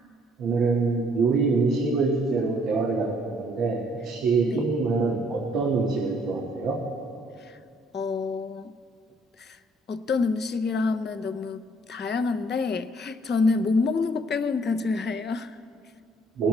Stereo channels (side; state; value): both; normal; correlation 0.63